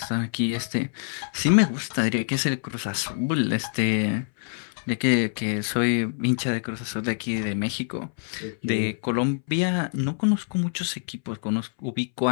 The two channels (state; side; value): silent; right; 61 dB below the other